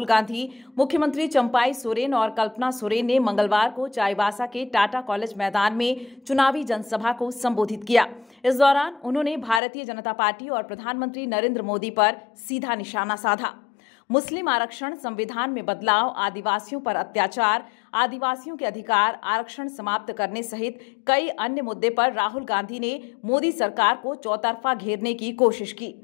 गांधी, मुख्यमंत्री चंपाई सोरेन और कल्पना सोरेन ने मंगलवार को चाईबासा के टाटा कॉलेज मैदान में चुनावी जनसभा को संबोधित किया। इस दौरान उन्होंने भारतीय जनता पार्टी और प्रधानमंत्री नरेंद्र मोदी पर सीधा निशाना साधा। मुस्लिम आरक्षण, संविधान में बदलाव, आदिवासियों पर अत्याचार, आदिवासियों के अधिकार, आरक्षण समाप्त करने सहित कई अन्य मुद्दे पर राहुल गांधी ने मोदी सरकार को चौतरफा घेरने की कोशिश की।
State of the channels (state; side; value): drops out; right; at 9.6 s